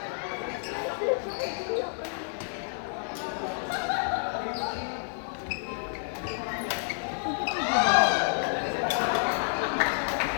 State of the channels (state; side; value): silent; right; digital silence